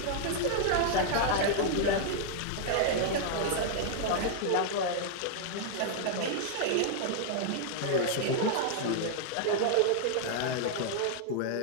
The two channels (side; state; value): both; different; correlation -0.01